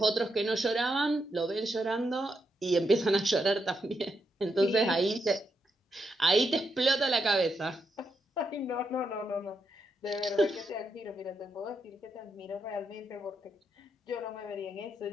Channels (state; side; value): normal; both; correlation 0.82